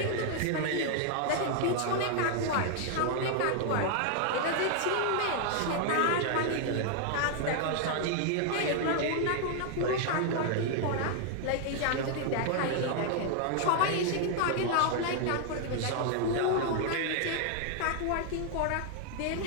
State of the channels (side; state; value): both; different; correlation 0.00